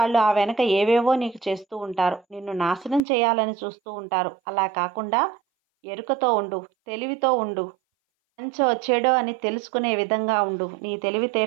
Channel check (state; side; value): drops out; left; at 3.0 s